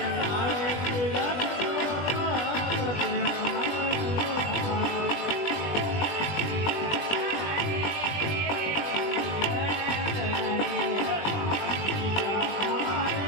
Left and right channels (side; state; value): right; late; 20 ms